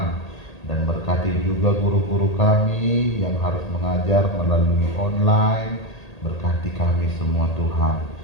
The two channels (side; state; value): right; late; 1.8 ms